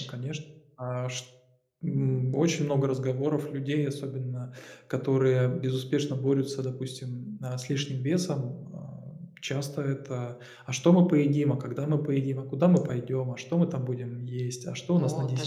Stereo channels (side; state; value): both; identical; correlation 1.00